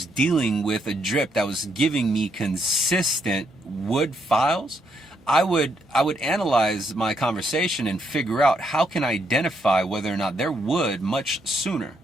dealing with a drip that was giving me consistent wood files, I would analyze my conversation and figure out how can I identify whether or not they're wood much sooner.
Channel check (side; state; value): both; normal; correlation 0.76